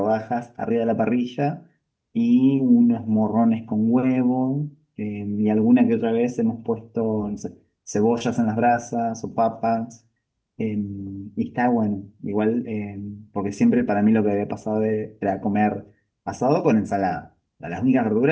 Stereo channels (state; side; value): identical; both; correlation 1.00